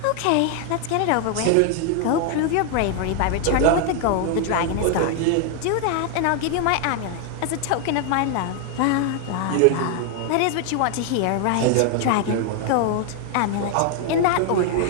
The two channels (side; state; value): both; different; correlation 0.00